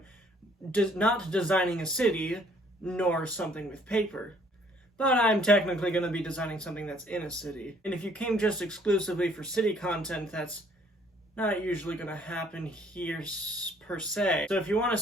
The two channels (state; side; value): normal; both; correlation 0.61